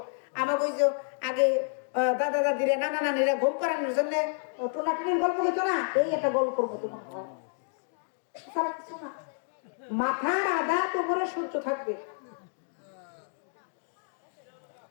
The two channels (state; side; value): silent; right; digital silence